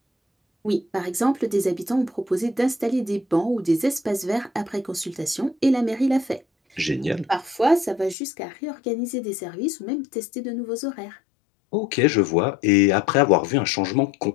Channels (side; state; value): right; drops out; at 8.2 s